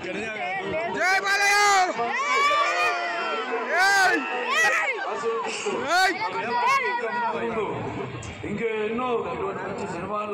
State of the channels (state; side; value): identical; both; correlation 1.00